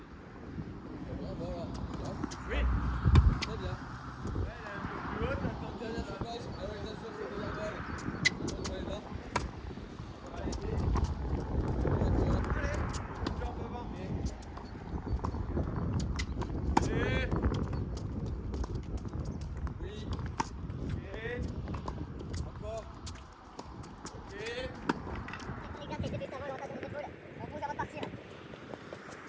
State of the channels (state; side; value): identical; both; correlation 1.00